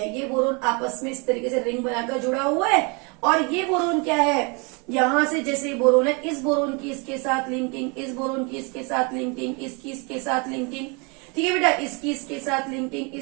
ये बोरोन आपस में इस तरीके से रिंग बनाकर जुड़ा हुआ है। और ये बोरोन क्या है, यहां से जैसे बोरोन है, इस बोरोन की इसके साथ लिंकिंग, इस बोरोन की इसके साथ लिंकिंग, इसकी इसके साथ लिंकिंग, ठीक है बेटा, इसकी इसके साथ लिंकिंग,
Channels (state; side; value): quieter; left; 31.8 dB